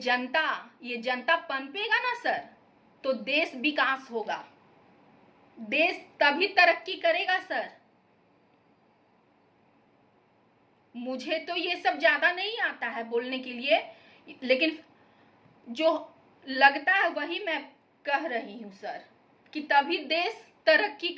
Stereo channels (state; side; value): identical; both; correlation 1.00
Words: पनपेगा ना सर, तो देश विकास होगा, देश तभी तरक्की करेगा सर। मुझे तो ये सब ज्यादा नहीं आता है बोलने के लिए, लेकिन जो लगता है वही मैं कह रही हूं सर, कि तभी देश तरक्की